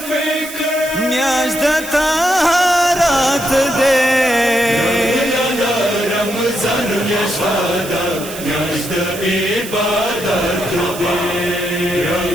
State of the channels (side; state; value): right; noise; hiss, 12 dB below the sound